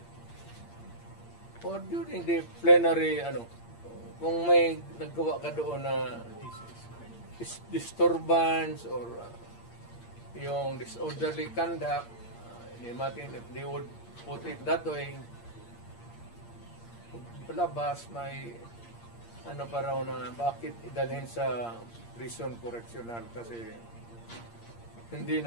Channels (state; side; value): late; right; 8.6 ms